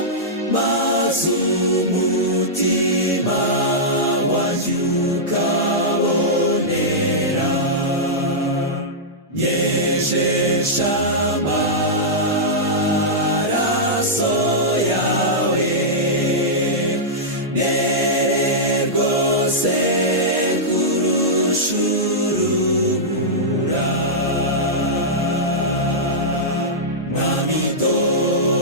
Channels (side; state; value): both; normal; correlation -0.11